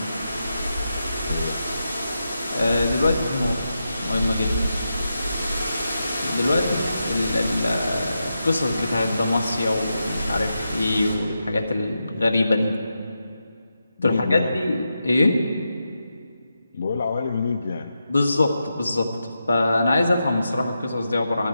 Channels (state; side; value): inverted; both; correlation -0.88